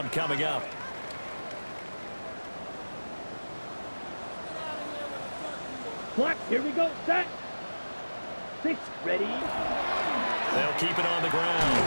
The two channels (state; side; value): inverted; both; correlation -1.00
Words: coming up. Clock, here we go. Set. 6, ready. They'll keep it on the